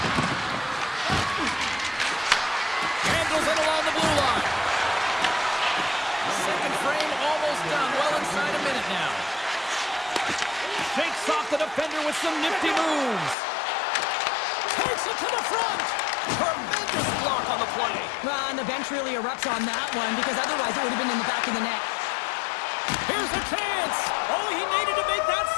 Handles it along the blue line. Second frame almost done. Well inside a minute now. Shakes off the defender with some nifty moves. Takes it to the front. Tremendous block on the play. Well, and the bench really erupts on that one, because otherwise it would have been in the back of the net. Here's a chance. Oh, he needed to make that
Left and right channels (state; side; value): drops out; right; at 13.4 s